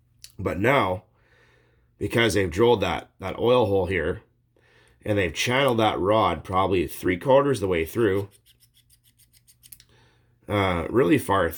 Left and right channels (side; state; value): both; identical; correlation 1.00